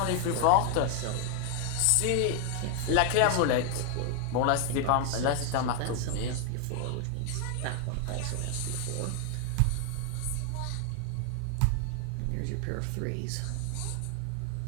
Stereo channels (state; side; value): different; both; correlation 0.00